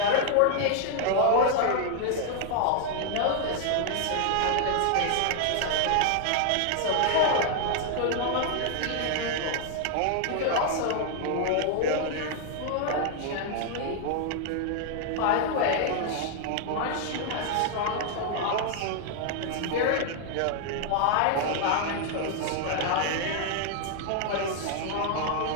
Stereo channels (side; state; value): both; different; correlation 0.00